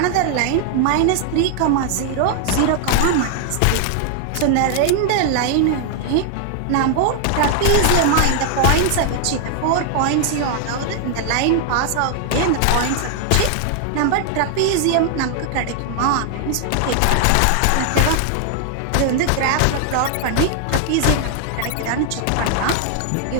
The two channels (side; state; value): both; different; correlation 0.00